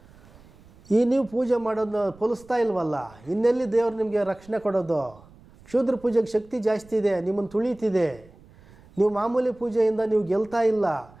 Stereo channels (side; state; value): right; noise; rumble, 25 dB below the sound